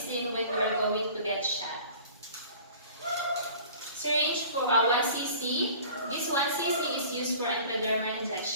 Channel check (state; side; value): inverted; both; correlation -0.45